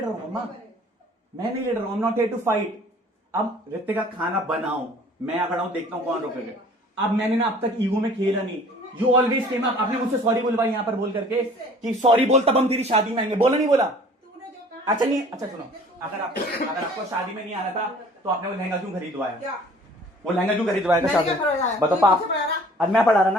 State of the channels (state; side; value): normal; both; correlation 0.51